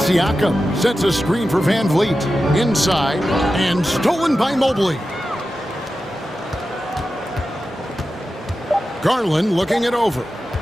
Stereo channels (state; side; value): normal; both; correlation 0.92